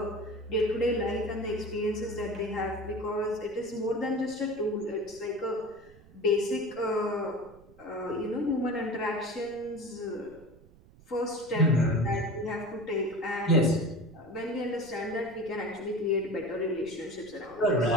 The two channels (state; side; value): noise; right; rumble, 24 dB below the sound